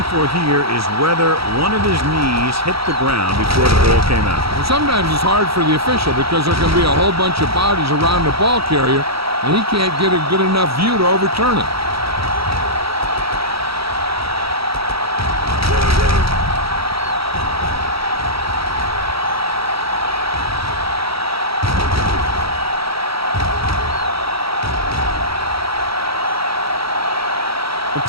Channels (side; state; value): left; late; 0.76 ms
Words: for here is whether one of his knees hit the ground before the ball came out. And sometimes it's hard for the official because there can be a whole bunch of bodies around the ball carrier, and he can't get a good enough view to overturn it.